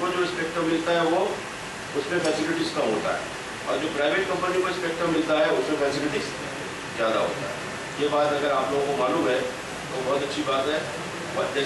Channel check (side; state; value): both; identical; correlation 1.00